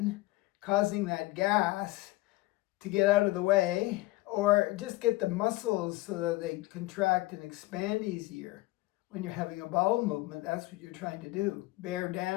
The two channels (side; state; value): right; quieter; 19.8 dB